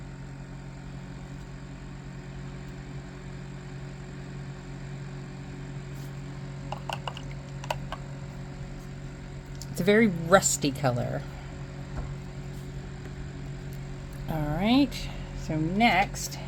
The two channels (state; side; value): identical; both; correlation 1.00